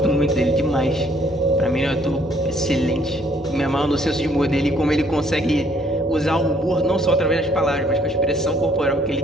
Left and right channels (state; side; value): normal; both; correlation 0.64